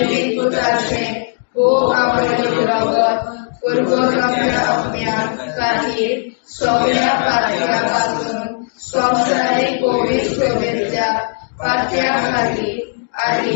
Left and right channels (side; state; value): right; silent; digital silence